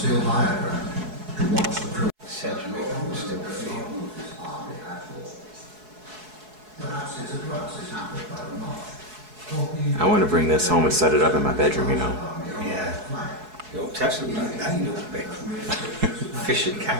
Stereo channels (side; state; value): left; late; 4.7 ms